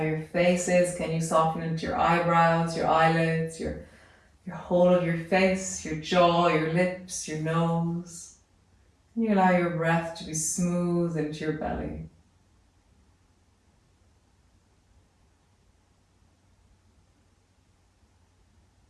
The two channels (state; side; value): identical; both; correlation 1.00